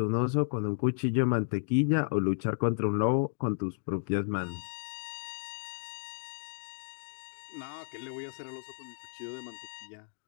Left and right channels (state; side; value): silent; right; digital silence